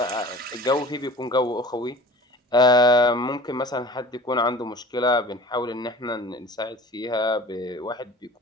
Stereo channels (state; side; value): normal; both; correlation 0.42